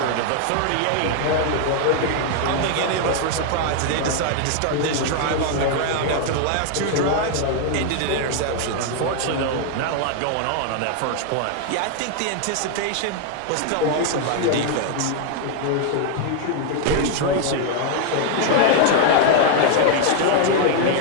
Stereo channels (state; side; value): different; both; correlation 0.00